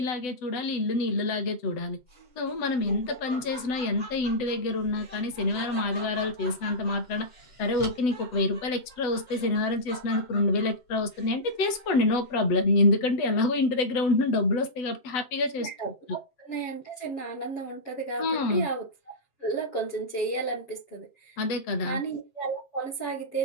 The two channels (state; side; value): late; right; 8.0 ms